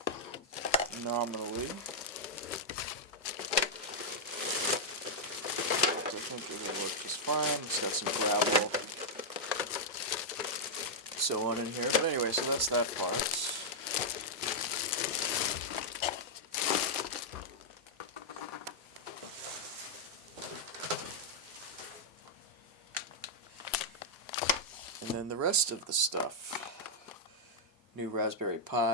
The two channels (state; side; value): normal; both; correlation -0.05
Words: nominally. I think it will work just fine. It's got some gravel, so on in here. But anyway, so that's that part. And then the rest of the stuff. New Raspberry